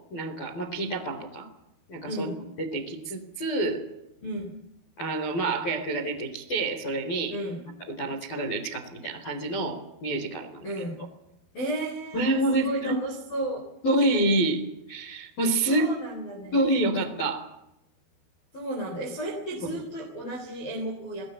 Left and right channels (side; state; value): right; late; 12 ms